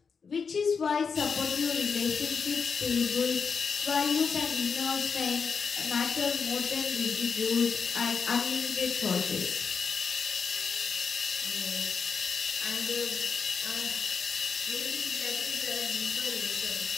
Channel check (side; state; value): right; quieter; 5.7 dB